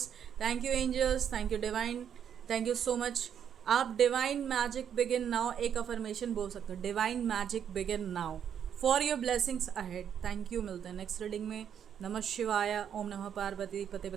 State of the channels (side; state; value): left; quieter; 8.6 dB